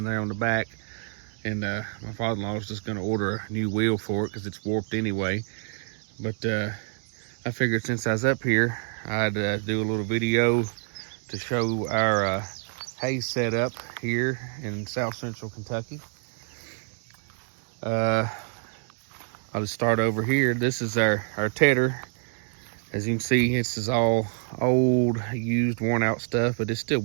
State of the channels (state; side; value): silent; left; digital silence